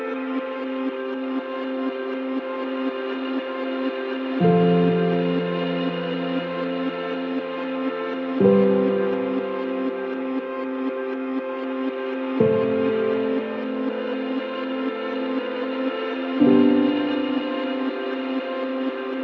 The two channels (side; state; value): both; identical; correlation 1.00